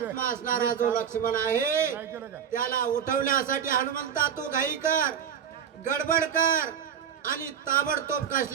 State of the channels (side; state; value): left; quieter; 8.3 dB